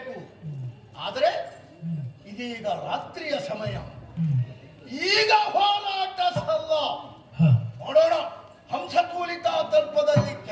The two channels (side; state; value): both; identical; correlation 1.00